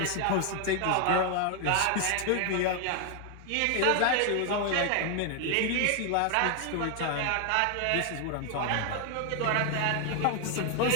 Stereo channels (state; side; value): different; both; correlation 0.01